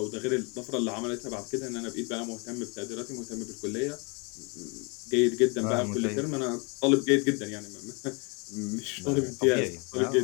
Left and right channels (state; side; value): quieter; right; 31.9 dB